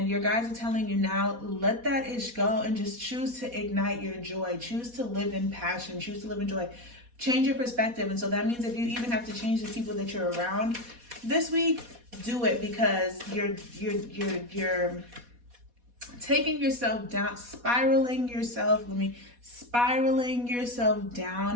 your guides are telling you now, let that ish go and just choose to ignite your joy. Choose to live in passion. Choose to live in joy. Change your perspective. And so that means if you even have to change the people that you're around this week, do it, because you're taking yourself down, spiraling yourself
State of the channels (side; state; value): left; late; 4.2 ms